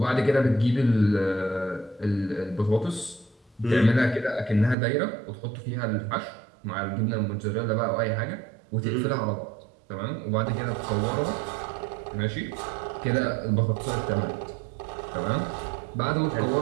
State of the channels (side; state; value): left; drops out; at 4.8 s